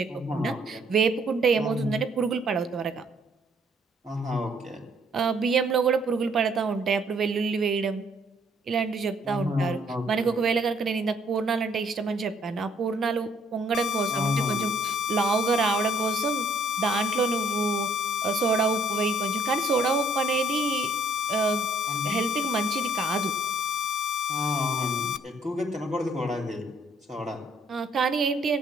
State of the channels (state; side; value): normal; both; correlation 0.64